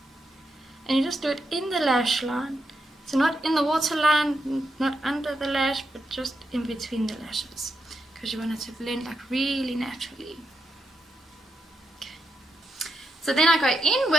And you just do it in the lash line. So not in the waterline, not under the lash, but just in between the lashes. Because you want it to blend like really naturally. Okay. So then I go in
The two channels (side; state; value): both; normal; correlation 0.84